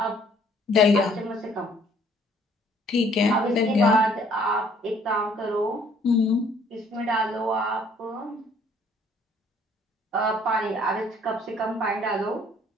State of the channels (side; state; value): both; normal; correlation 0.60